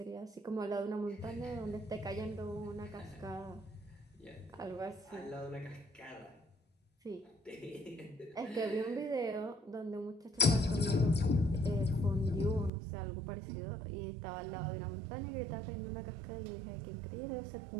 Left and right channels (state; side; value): drops out; left; at 12.7 s